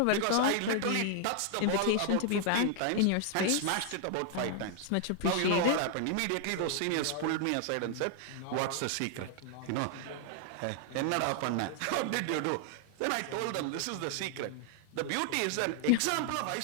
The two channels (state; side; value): different; both; correlation 0.00